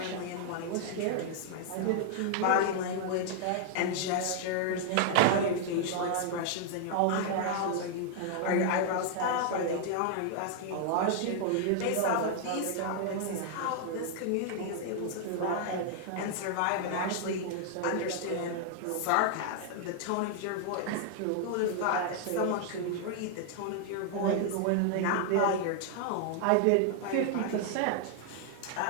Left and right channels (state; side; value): different; both; correlation 0.00